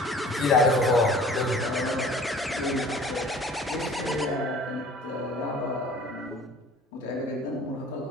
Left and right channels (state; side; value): normal; both; correlation 0.48